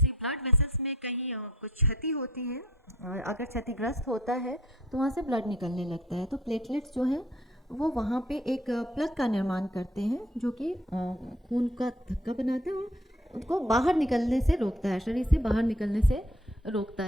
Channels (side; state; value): both; normal; correlation 0.56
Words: ब्लड वेसल्स में कहीं कुछ क्षति होती है, अगर क्षतिग्रस्त होता है तो वहाँ से ब्लड निकलने लगता है। तो प्लेटलेट्स जो है वो वहाँ पे एक प्लग का निर्माण करते हैं, जो कि खून का थक्का बनाते हैं और उनको बाहर निकलने से रोकता है, शरीर से बाहर निकलने से रोकता